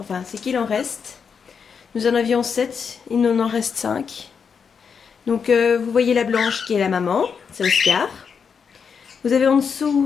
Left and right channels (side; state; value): right; quieter; 6.3 dB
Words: c'est qu'il en reste. Nous en avions 7, il nous en reste 5. Donc vous voyez la blanche qui est la maman, c'est Oscar. Vous avez en